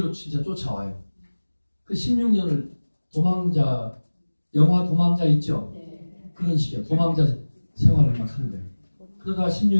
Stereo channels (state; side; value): inverted; both; correlation -1.00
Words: 진짜 쫓아와요. 그 16년을 도망자, 영화 도망자 있죠? 네. 그런 식이야. 도망자 생활을 막 하는 거예요. 그러다가